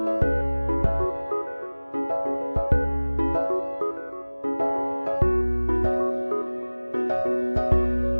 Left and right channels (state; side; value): inverted; both; correlation -1.00